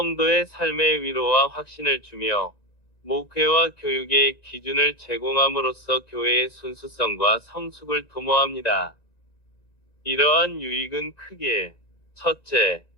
삶의 위로와 확신을 주며 목회와 교육의 기준을 제공함으로써 교회의 순수성과 성숙을 도모합니다. 이러한 유익은 크게 첫째,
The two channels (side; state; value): right; late; 1.9 ms